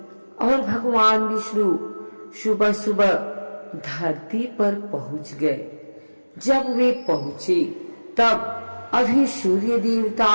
और भगवान विष्णु सुबह सुबह धरती पर पहुंच गए। जब वे पहुंचे तब अभी सूर्य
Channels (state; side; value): inverted; both; correlation -1.00